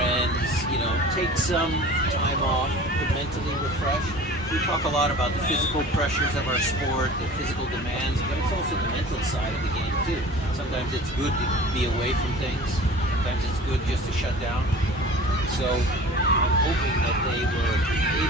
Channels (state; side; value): normal; both; correlation 0.42